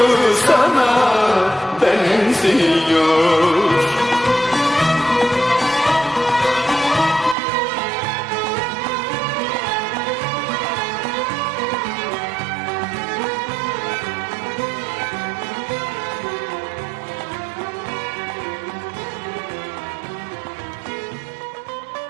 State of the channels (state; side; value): drops out; left; at 7.4 s